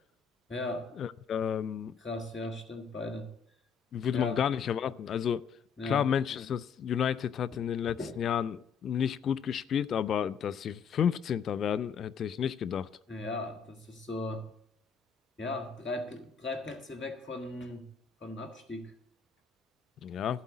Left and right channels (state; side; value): quieter; right; 6.8 dB